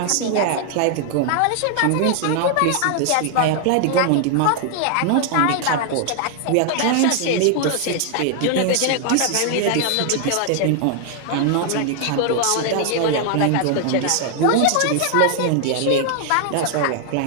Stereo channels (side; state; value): both; different; correlation 0.00